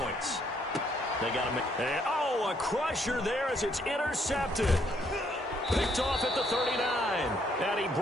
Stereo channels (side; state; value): both; normal; correlation 0.70